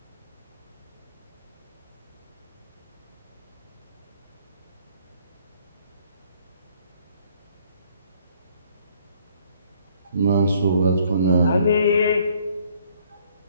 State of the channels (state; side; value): inverted; both; correlation -0.63